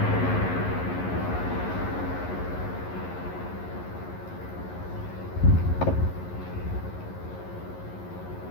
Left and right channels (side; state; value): right; late; 11 ms